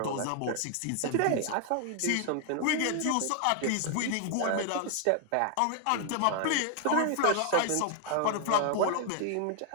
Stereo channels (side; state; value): both; different; correlation 0.00